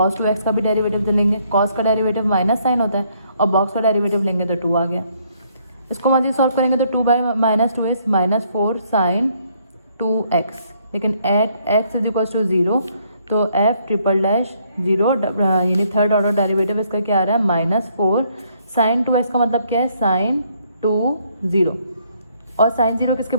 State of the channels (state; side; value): inverted; both; correlation -0.69